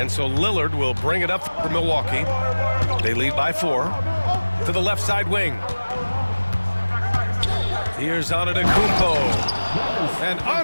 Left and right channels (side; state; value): both; inverted; correlation -1.00